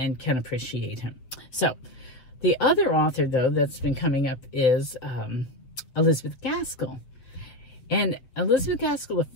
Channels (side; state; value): right; late; 7.8 ms